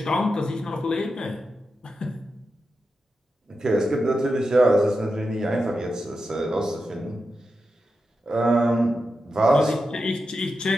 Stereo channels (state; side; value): normal; both; correlation 0.89